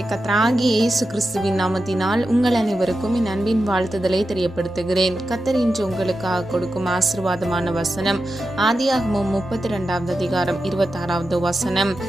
கர்த்தராகிய இயேசு கிறிஸ்துவின் நாமத்தினால் உங்கள் அனைவருக்கும் என் அன்பின் வாழ்த்துதலை தெரியப்படுத்துகிறேன். கர்த்தர் இன்று உங்களுக்காக கொடுக்கும் ஆசீர்வாதமான வசனம் ஆதியாகமம் 32வது அதிகாரம் 26வது வசனம்.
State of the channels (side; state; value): both; normal; correlation 0.90